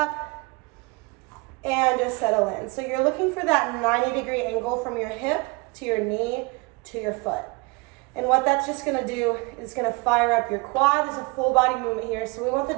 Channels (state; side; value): quieter; left; 26.7 dB